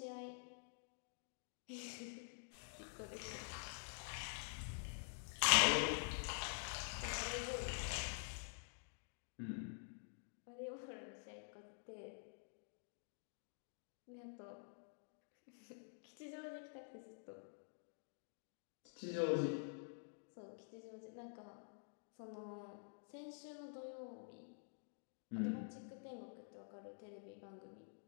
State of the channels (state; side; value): silent; right; digital silence